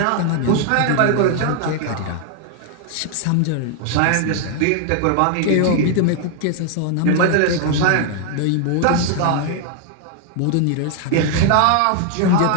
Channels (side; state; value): both; different; correlation 0.00